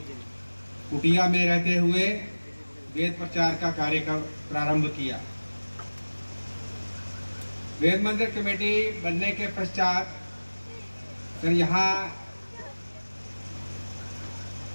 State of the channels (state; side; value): inverted; both; correlation -1.00